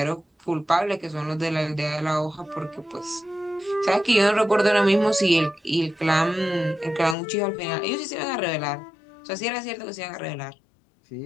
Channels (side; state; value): right; drops out; at 7.2 s